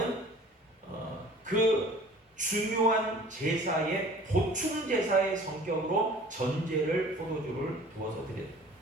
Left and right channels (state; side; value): normal; both; correlation 0.47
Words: 그 중요한 제사의 보충 제사의 성격으로 전제를 포도주를 부어서 드렸다.